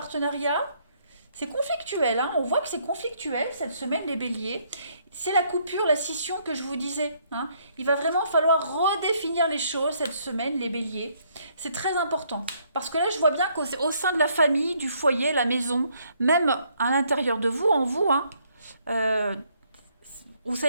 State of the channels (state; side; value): inverted; both; correlation -0.69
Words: C'est conflictuel, hein. On voit que c'est conflictuel cette semaine, les béliers. C'est la coupure, la scission que je vous disais. Hein. Il va vraiment falloir redéfinir les choses cette semaine, les béliers. C'est très important. Parce que là, je vois bien qu'au sein de la famille, du foyer, la maison, même à l'intérieur de vous, en vous, hein, euh, vous ne